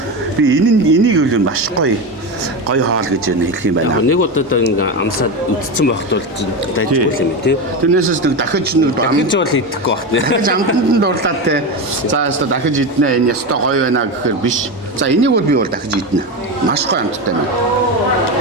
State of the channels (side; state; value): both; normal; correlation 0.18